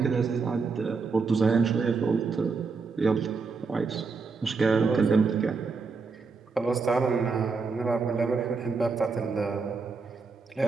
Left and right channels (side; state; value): left; quieter; 4.7 dB